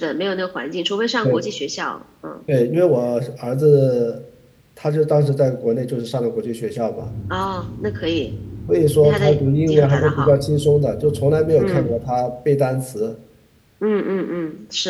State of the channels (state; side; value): identical; both; correlation 1.00